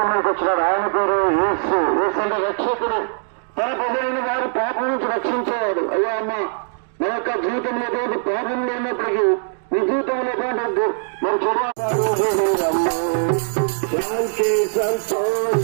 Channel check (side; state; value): left; silent; digital silence